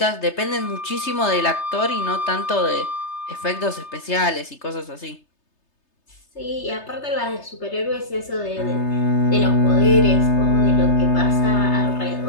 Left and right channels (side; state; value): right; late; 3.3 ms